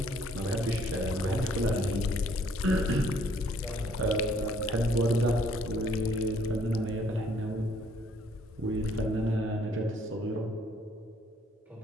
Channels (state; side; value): normal; both; correlation 0.63